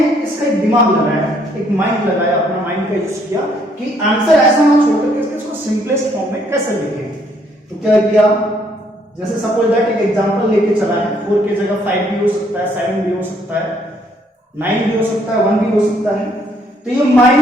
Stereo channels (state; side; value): normal; both; correlation 0.67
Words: इसका एक दिमाग लगाया, एक माइंड लगाया, अपना माइंड का यूज किया कि आंसर ऐसा ना छोड़ करके इसको सिंपलेस्ट फॉर्म में कैसे लिखें। तो क्या किया, जैसे सपोज दैट एक एग्जांपल लेके चला है, 4 की जगह 5 भी हो सकता है, 7 भी हो सकता है, 9 भी हो सकता है, 1 भी हो सकता है। तो ये